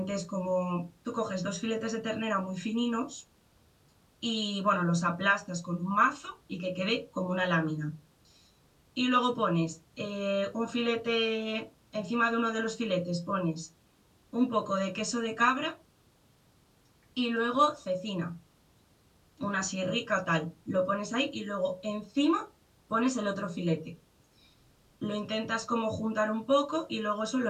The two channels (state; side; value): identical; both; correlation 1.00